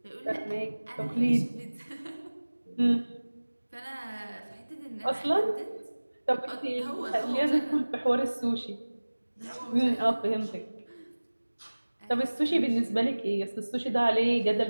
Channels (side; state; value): both; inverted; correlation -1.00